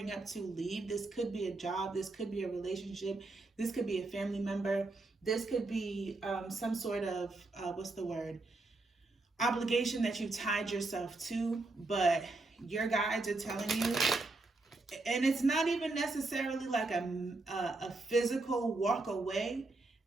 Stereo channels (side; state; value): left; quieter; 3.2 dB